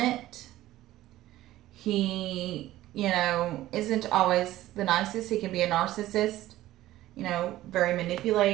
He, isn't always the nicest. He can be a narcissist, very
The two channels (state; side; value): quieter; left; 15.2 dB